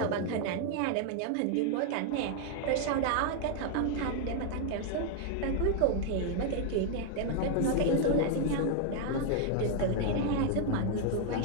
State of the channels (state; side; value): different; both; correlation 0.00